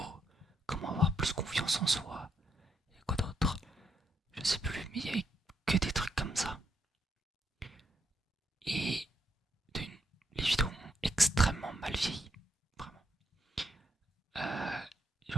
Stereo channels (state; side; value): normal; both; correlation 0.78